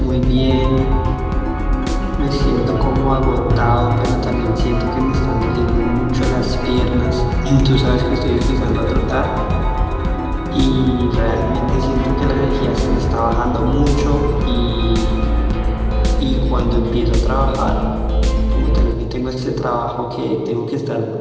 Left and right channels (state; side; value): identical; both; correlation 1.00